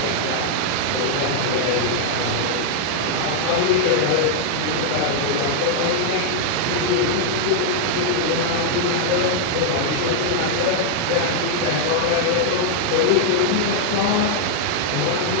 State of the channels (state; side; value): different; both; correlation 0.00